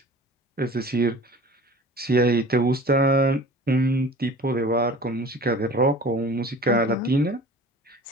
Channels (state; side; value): normal; both; correlation 0.42